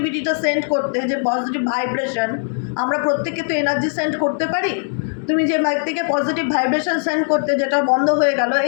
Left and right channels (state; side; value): silent; right; digital silence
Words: সেন্ড করতে, যে পজিটিভ ভাইব্রেশন, আমরা প্রত্যেকে তো এনার্জি সেন্ড করতে পারি, তুমি যে ব্যক্তিকে পজিটিভ ভাইব্রেশন সেন্ড করতে, যেটা বন্ধ হয়ে গেল,